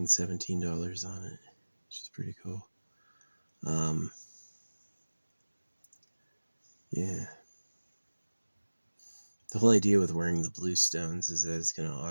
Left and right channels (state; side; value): inverted; both; correlation -1.00